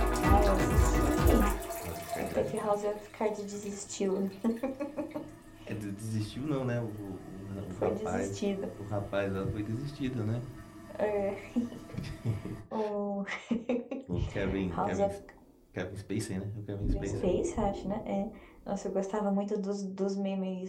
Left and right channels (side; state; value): both; identical; correlation 1.00